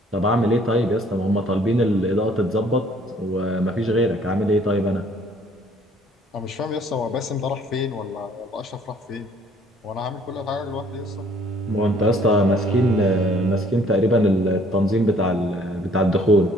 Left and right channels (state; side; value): normal; both; correlation 0.59